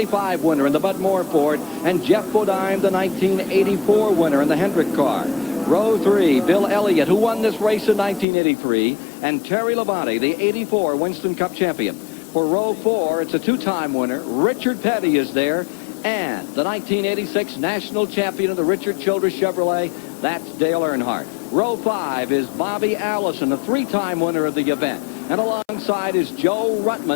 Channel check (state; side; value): drops out; right; at 8.2 s